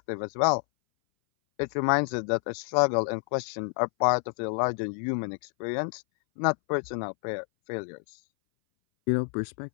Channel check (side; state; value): right; silent; 59 dB below the other